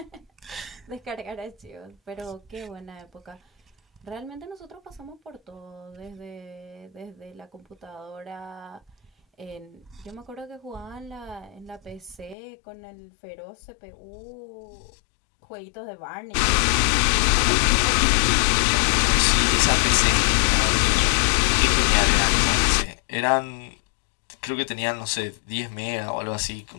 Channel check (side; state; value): right; drops out; at 12.4 s